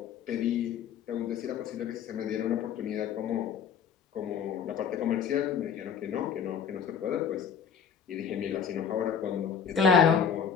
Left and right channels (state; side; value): quieter; right; 7.4 dB